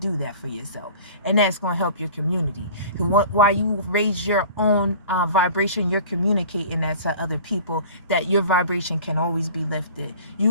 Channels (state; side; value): inverted; both; correlation -0.43